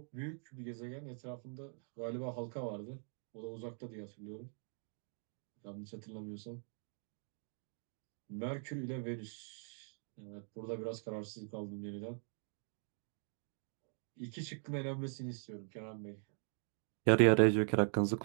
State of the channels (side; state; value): left; silent; 50 dB below the other